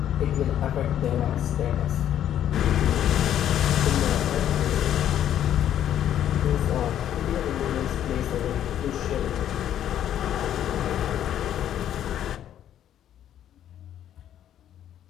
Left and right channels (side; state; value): right; quieter; 10.7 dB